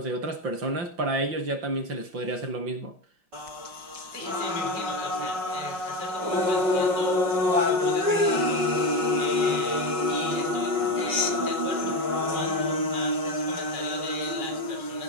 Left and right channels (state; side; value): late; left; 5.4 ms